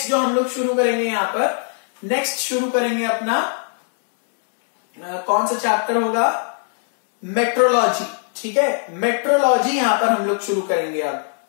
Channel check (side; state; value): right; silent; digital silence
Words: जो हम लोग शुरू करेंगे यहां पर, नेक्स्ट शुरू करेंगे अपना कौन सा चैप्टर होगा, मेट्रोलॉजी. ठीक है, मेट्रोलॉजी यहां पर हम लोग शुरू करेंगे अब.